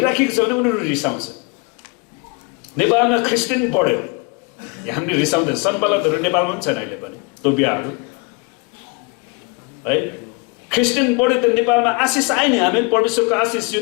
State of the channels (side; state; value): right; quieter; 30.3 dB